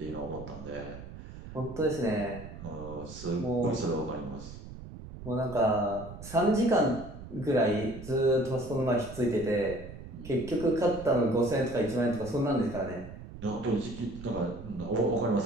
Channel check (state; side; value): noise; right; rumble, 13 dB below the sound